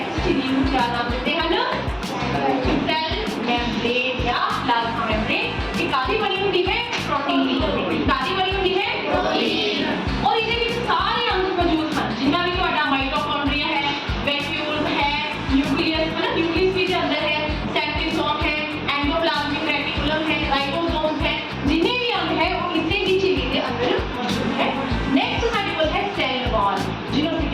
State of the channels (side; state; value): both; identical; correlation 1.00